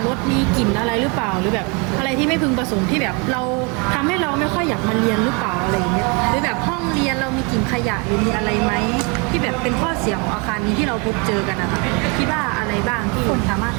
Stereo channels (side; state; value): left; quieter; 31.7 dB